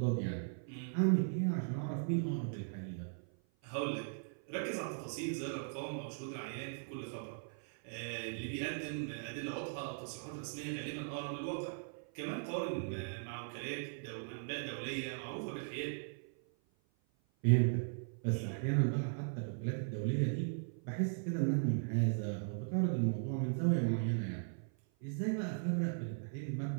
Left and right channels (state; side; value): silent; left; 52 dB below the other